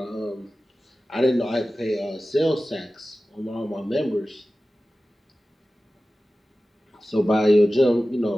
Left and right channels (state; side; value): normal; both; correlation 0.96